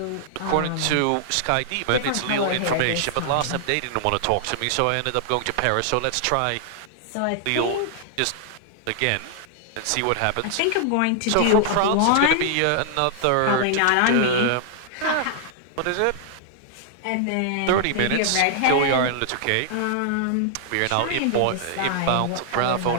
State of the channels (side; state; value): both; different; correlation -0.01